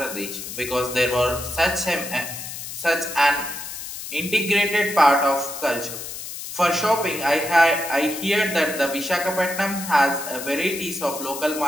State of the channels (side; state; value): left; noise; hiss, 9 dB below the sound